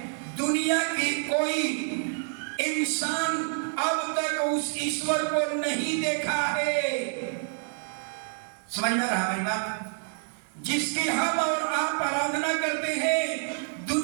दुनिया की कोई इंसान अब तक उस ईश्वर को नहीं देखा है। समझ में रहा मेरी बात? जिसकी हम और आप आराधना करते हैं,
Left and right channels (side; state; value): left; silent; 59 dB below the other